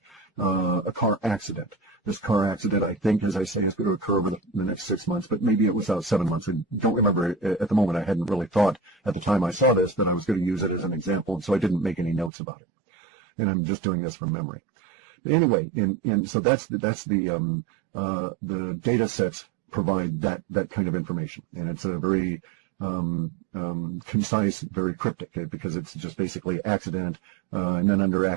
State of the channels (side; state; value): left; drops out; at 12.3 s